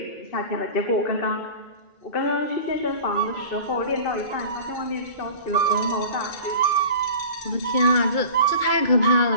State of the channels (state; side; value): late; right; 2.3 ms